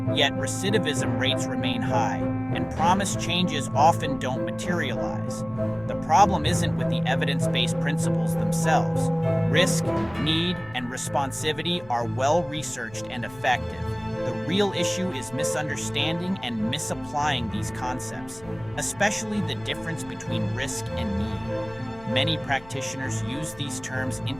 Yet recidivism rates remain high, and promised changes often don't materialize. The problem isn't with the evidence-based principles themselves. Risk, need, and responsivity are well researched and effective. The real issue is misunderstanding and misapplying these concepts, especially the difference between risk and need. Many practitioners use these terms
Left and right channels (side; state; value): left; noise; rumble, 22 dB below the sound